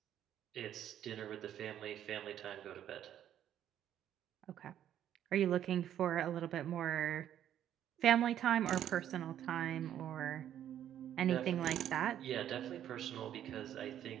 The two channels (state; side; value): quieter; left; 10.7 dB